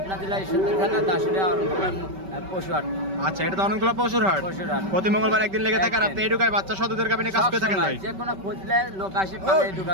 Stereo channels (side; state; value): left; late; 5.2 ms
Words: জেলা ঈশ্বরদী থানা দাসুরিয়া পশুহাট। আচ্ছা, এটা তো অনেকগুলো পশুর হাট। প্রতি মঙ্গলবার একদিন লেগে থাকে আর আপনি এডুকায় বাচ্চা সহ দুধের গাবি নিয়ে কাজ করে থাকেন ভাই? যে কোনো খুঁজলে লোক আসে পাবে